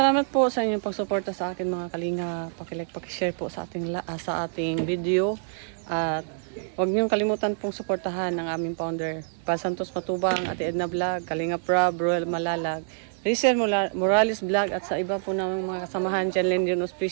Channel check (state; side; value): silent; left; digital silence